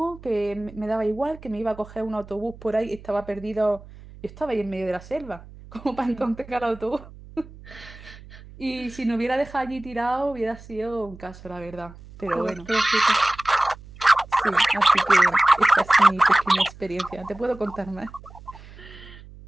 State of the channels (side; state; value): right; noise; hum, 19 dB below the sound